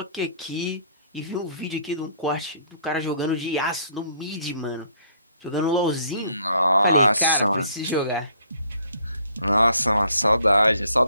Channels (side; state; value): both; inverted; correlation -0.63